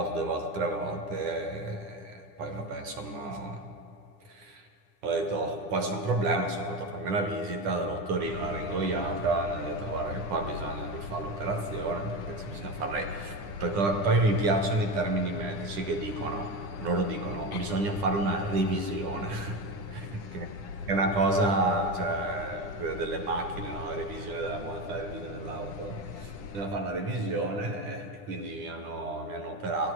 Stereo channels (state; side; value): late; left; 10 ms